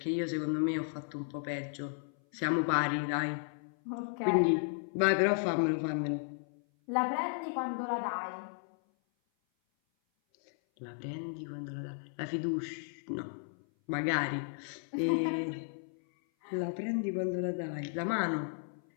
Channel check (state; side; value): silent; right; 55 dB below the other